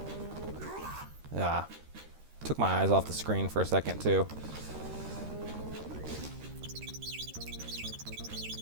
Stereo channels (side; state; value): left; late; 13 ms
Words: Ah. Took my eyes off the screen for a second, too.